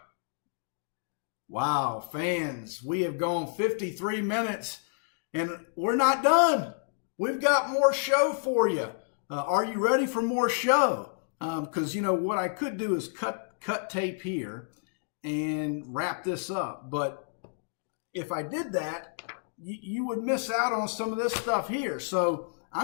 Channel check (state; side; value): silent; right; digital silence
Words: Wow, fans, we have gone 53 minutes, and we're not done. We've got more show for you. Are you ready for more show? Because, what I could do is cut tape here and wrap this up. But if I did that, you would miss out on some of this stuff here. So